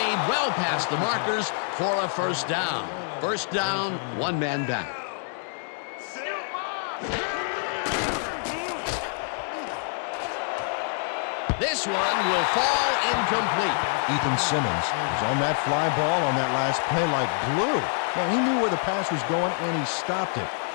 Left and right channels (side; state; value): right; silent; 56 dB below the other